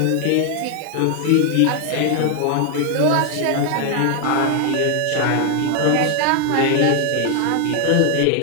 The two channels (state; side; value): different; both; correlation 0.00